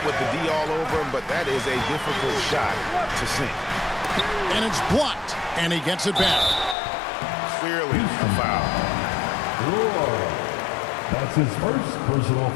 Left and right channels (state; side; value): drops out; right; at 6.8 s